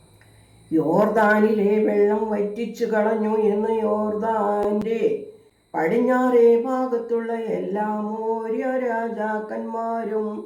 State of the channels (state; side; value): identical; both; correlation 1.00